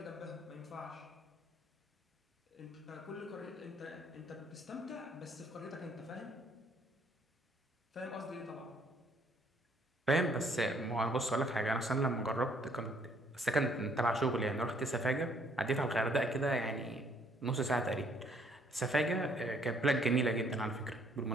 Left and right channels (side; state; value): both; normal; correlation 0.65